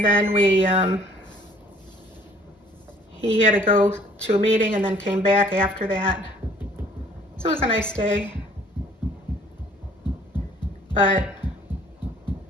then he had to go to a meeting and then came back after that. So it was a nice day, but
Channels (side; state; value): both; normal; correlation 0.57